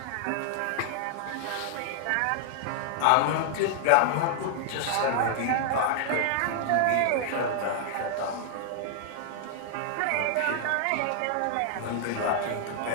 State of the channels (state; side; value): different; both; correlation 0.00